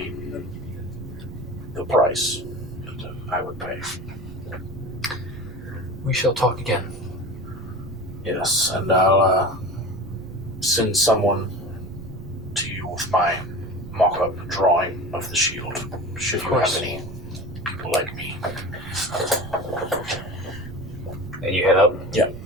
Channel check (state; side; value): noise; right; rumble, 14 dB below the sound